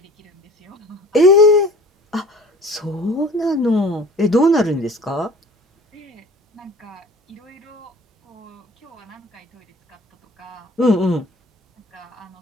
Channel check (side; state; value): both; normal; correlation 0.45